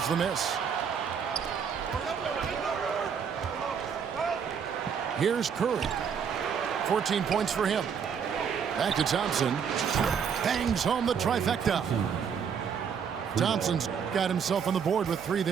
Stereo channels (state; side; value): quieter; left; 7.1 dB